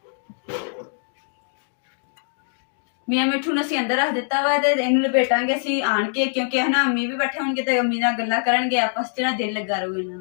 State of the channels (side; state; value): right; silent; digital silence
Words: ਮੀਆਂ ਮਿੱਠੂ ਨੂੰ ਅਸੀਂ ਅੰਦਰ ਰੱਖ ਦਿੱਤਾ ਵਾ ਤੇ ਇਹਨੂੰ ਲਪੇਟਾਂਗੇ ਅਸੀਂ ਆਣ ਕੇ, ਕਿਉਂਕਿ ਹੈ ਨਾ ਅੰਮੀ ਵੀ ਬੈਠੇ ਹੋਣਗੇ ਤੇ ਅੰਮੀ ਨਾਲ ਗੱਲਾਂ ਕਰਨਗੇ, ਆਪਸ 'ਚ ਨਾ ਦਿਲ ਲੱਗਾ ਰਹੂਗਾ ਇਹਨਾਂ